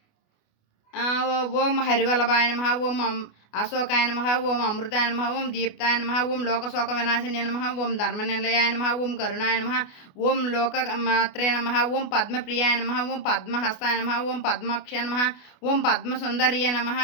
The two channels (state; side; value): late; right; 28 ms